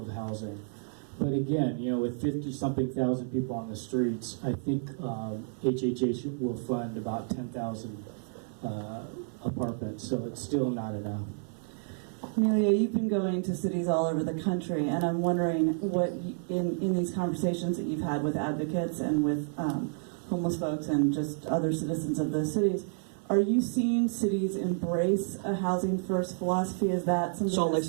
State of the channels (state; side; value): silent; left; 58 dB below the other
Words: housing. But again, with 50-something thousand people on the streets, I think HHH will fund about 10,000 apartments, so it's still not enough. Emilio, you've been going to cities all over the country, and I'm wondering what, in these conversations that you've had with advocates and with homeless folks and just other citizens of those cities, are you seeing cities embrace a housing first philosophy? Is that something? Salt Lake